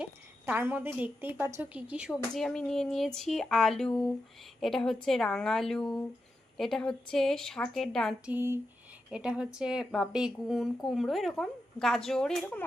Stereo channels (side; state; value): both; normal; correlation 0.88